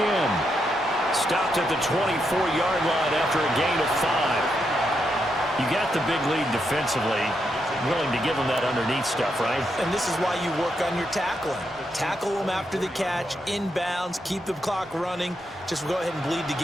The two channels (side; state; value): both; normal; correlation 0.81